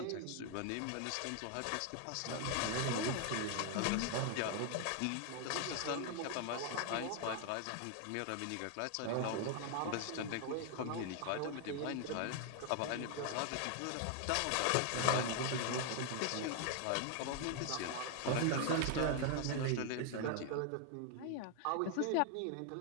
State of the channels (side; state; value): both; different; correlation 0.00